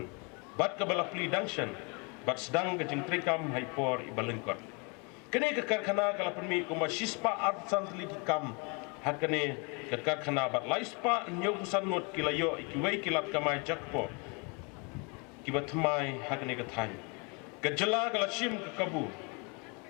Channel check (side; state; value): right; quieter; 32.4 dB